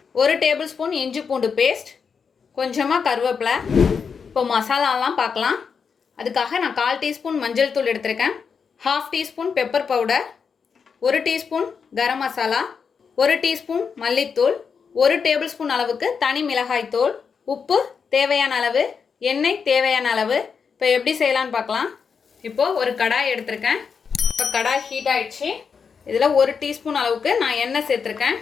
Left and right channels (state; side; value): quieter; right; 6.0 dB